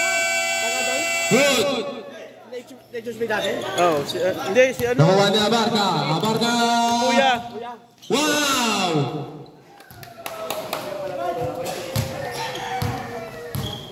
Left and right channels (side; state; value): both; identical; correlation 1.00